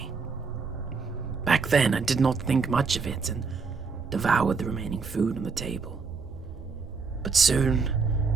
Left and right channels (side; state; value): left; quieter; 4.8 dB